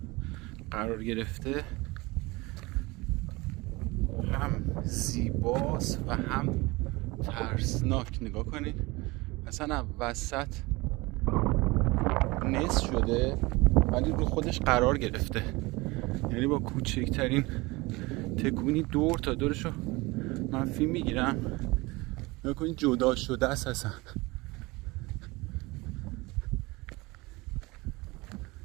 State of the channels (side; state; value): left; quieter; 23.1 dB